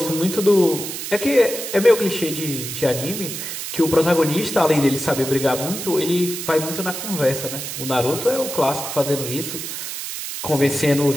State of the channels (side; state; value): right; noise; hiss, 6 dB below the sound